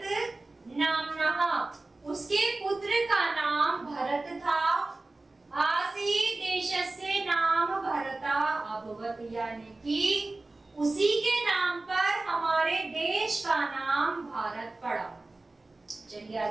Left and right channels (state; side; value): quieter; left; 3.1 dB